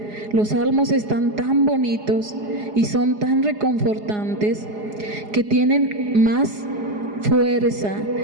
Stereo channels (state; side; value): late; left; 4.8 ms